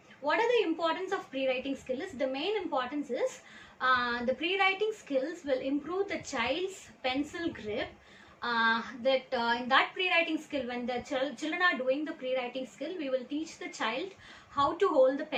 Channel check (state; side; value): identical; both; correlation 1.00